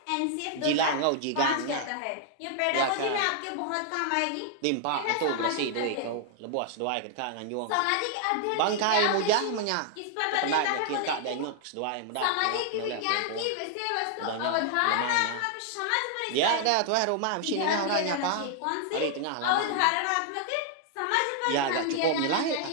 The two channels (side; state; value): both; different; correlation 0.00